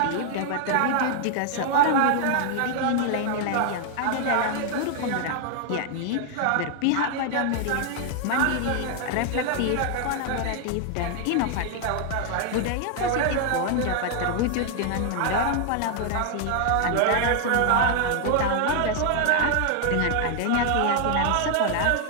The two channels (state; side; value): different; both; correlation 0.00